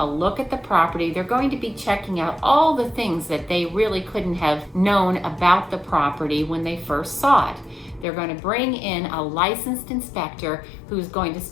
look at the property. They're going to be checking out all the things that they really couldn't have known about the property when they first saw it. They're going to bring in a licensed inspector who's going to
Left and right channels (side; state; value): right; drops out; at 8.1 s